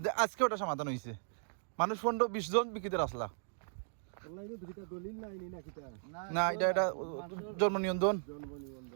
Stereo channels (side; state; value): left; silent; digital silence